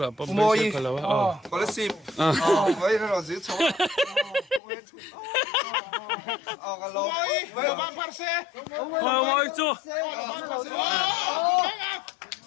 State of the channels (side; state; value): right; drops out; at 4.6 s